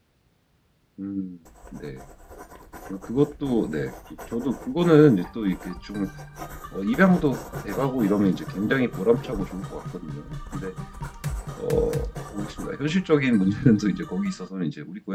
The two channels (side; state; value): both; identical; correlation 1.00